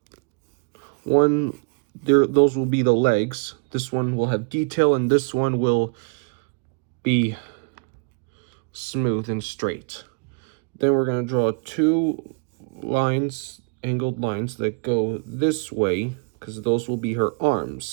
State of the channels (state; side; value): quieter; left; 37.6 dB